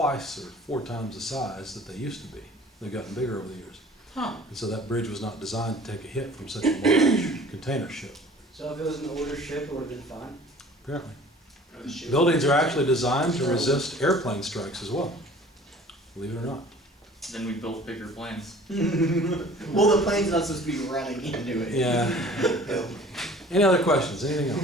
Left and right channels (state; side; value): normal; both; correlation 0.48